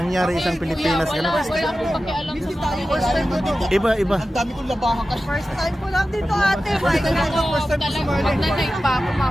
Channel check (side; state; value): both; normal; correlation 0.94